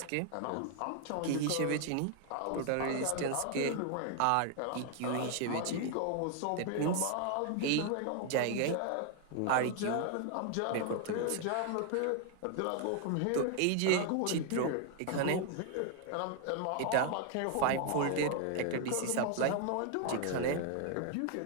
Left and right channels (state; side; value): different; both; correlation 0.00